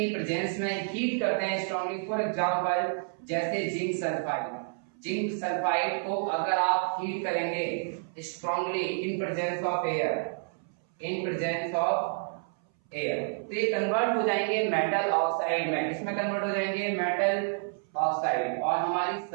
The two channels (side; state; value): left; silent; 58 dB below the other